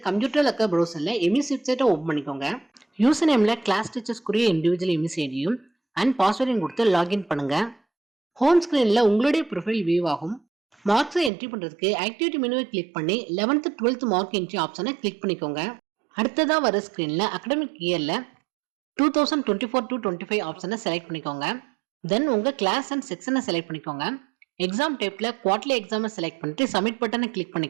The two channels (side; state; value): left; drops out; at 11.3 s